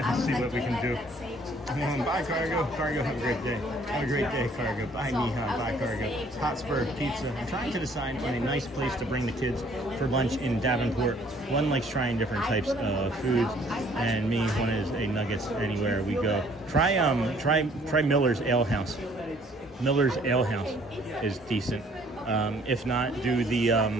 Let's see what we can do. Bye, Cargo. Cargo, have a great day. Have a great day, Cargo. Bye, Niha. Bye, Cargo. Hotspur Pizza. I'm trying to decide on a nice place to bring the kids for lunch in Davenport. One likes trying different types of foods, and me, one is a Nuggets anywhere we go. Try Miller's Ale House. Miller's Ale House is decent. If not, do the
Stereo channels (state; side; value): normal; both; correlation 0.60